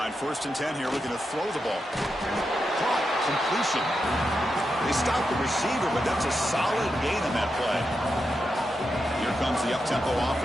1st and 10 here, looking to throw the ball. Caught, completion. They stopped the receiver, but that's a solid gain on that play. Here comes the up-tempo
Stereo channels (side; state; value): both; normal; correlation 0.87